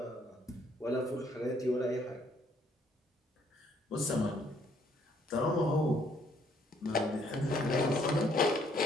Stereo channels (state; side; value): normal; both; correlation 0.66